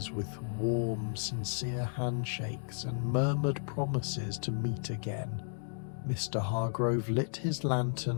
with warm, sincere handshakes and murmured promises to meet again. Mr. Hargrove lit his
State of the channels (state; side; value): silent; right; digital silence